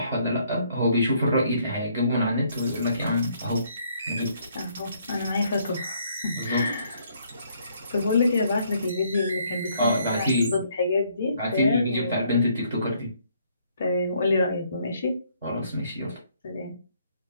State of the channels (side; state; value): both; inverted; correlation -0.67